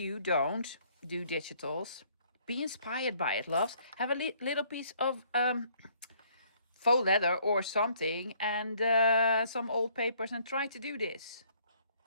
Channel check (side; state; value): both; inverted; correlation -0.63